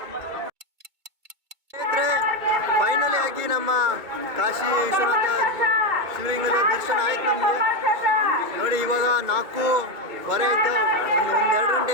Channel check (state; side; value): late; left; 2.2 ms